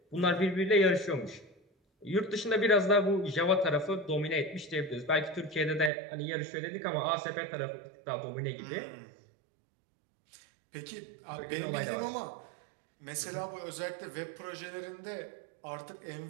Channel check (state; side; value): drops out; left; at 5.9 s